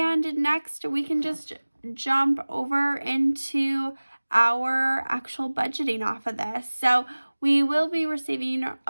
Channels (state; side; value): inverted; both; correlation -1.00